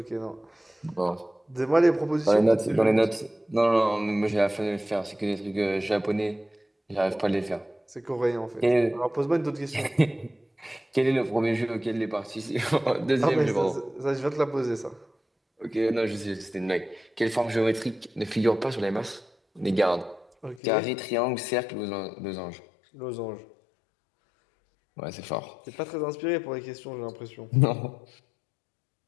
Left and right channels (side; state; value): right; drops out; at 20.6 s